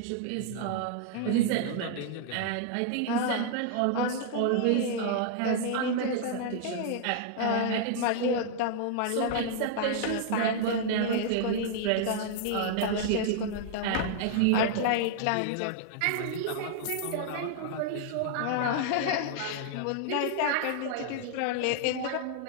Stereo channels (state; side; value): different; both; correlation -0.01